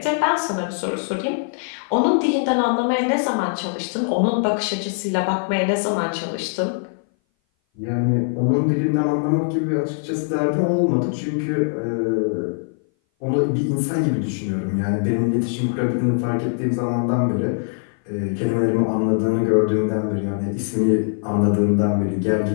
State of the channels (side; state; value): right; silent; 59 dB below the other